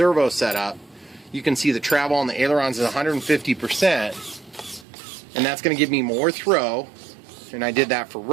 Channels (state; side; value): drops out; left; at 4.9 s